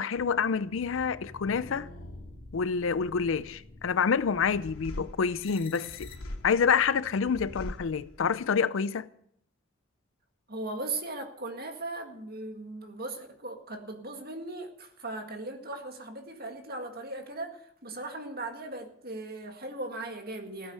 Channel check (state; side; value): quieter; right; 4.7 dB